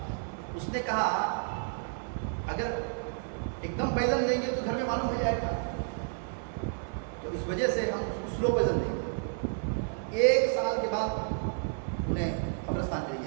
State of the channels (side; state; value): left; silent; 57 dB below the other